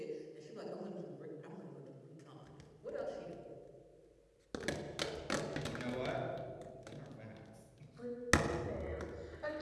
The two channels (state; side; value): identical; both; correlation 1.00